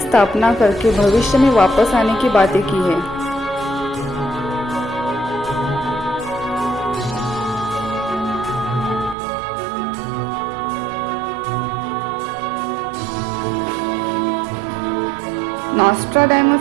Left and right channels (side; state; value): left; drops out; at 9.2 s